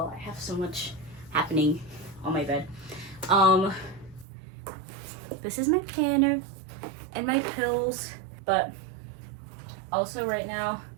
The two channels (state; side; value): drops out; left; at 4.2 s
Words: I have so much happening on my bed. This is my planner and my pills. But also right now,